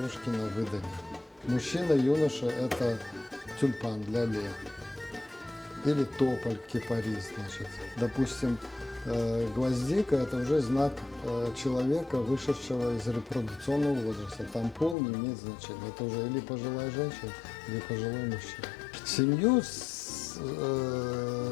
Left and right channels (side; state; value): right; drops out; at 15.0 s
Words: на выданье. Мужчина, юноша – это тюльпан для лет. Или тополь, кипарис, значит. Допустим, гвоздика – это уже знак человека, вышедшего из репродукционного возраста. Там пол не имеет значения. Это уже или пожилая женщина, или пожилой мужчина. Семью,